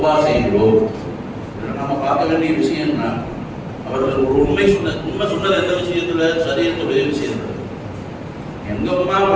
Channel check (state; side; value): identical; both; correlation 1.00